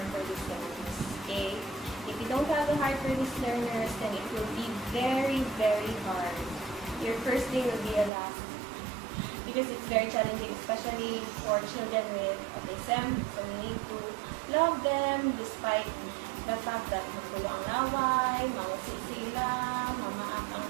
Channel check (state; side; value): drops out; left; at 8.1 s